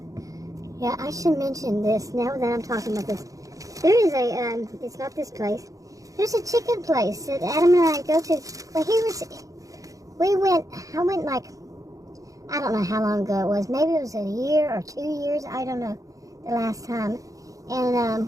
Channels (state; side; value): late; left; 0.16 ms